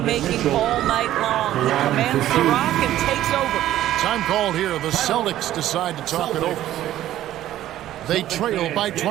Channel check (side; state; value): left; quieter; 13.2 dB